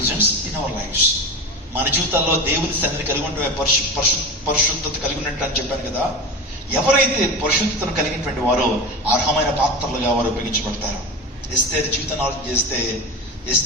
in our lives. మన జీవితాల్లో దేవుని సన్నిధిని కలిగి ఉంటే పరిశుద్ధత కలిగి ఉన్నట్టు అని చెప్పాను కదా. ఎవరైతే పరిశుద్ధతను కలిగినటువంటి వారో అర్హమైన పాత్రలుగా వారు ఉపయోగించబడతారు. ఎస్తేరు జీవితాన్ని ఆలోచన చేస్తే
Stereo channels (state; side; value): normal; both; correlation 0.26